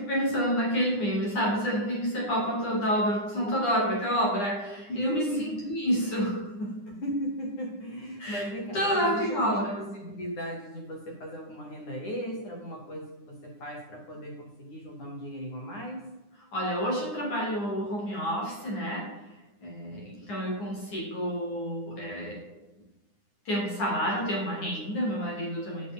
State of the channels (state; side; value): late; right; 9.8 ms